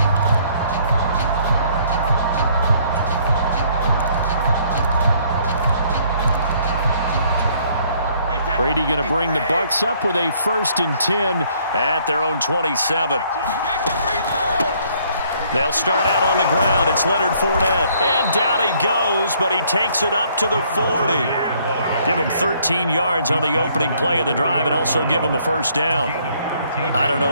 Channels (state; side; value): inverted; both; correlation -0.64